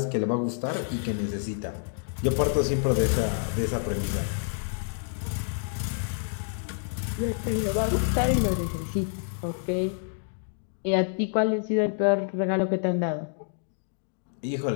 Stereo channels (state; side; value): silent; right; digital silence